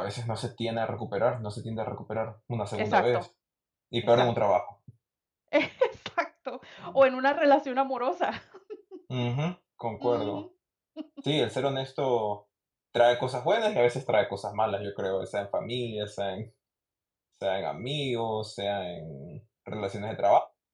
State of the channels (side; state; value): both; identical; correlation 1.00